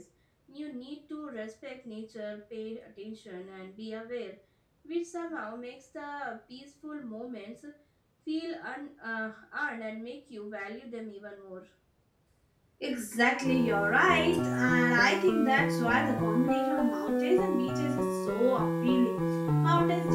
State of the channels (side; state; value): both; identical; correlation 1.00